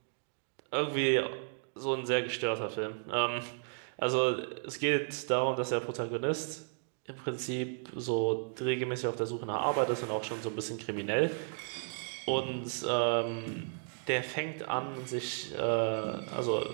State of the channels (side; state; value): left; silent; digital silence